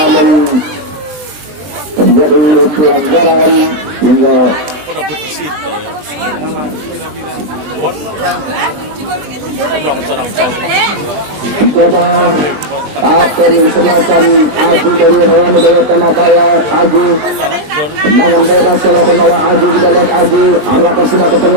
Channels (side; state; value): left; late; 20 ms